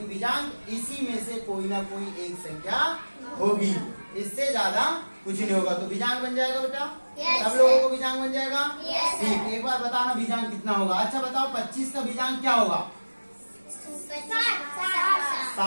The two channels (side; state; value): both; inverted; correlation -1.00